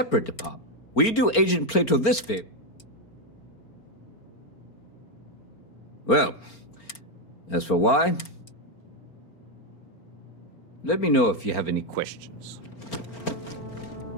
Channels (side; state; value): right; late; 4.4 ms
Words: department, we do Agent Plato this favor. Well, as for why, let me know if you have any questions.